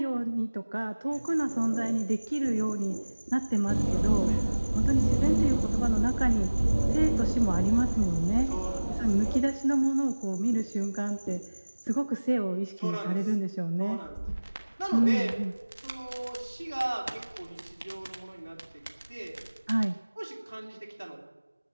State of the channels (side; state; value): both; inverted; correlation -1.00